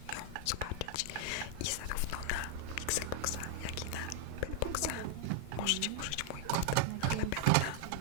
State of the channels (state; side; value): different; both; correlation 0.00